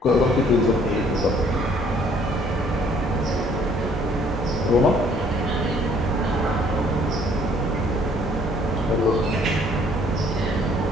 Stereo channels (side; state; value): both; normal; correlation 0.60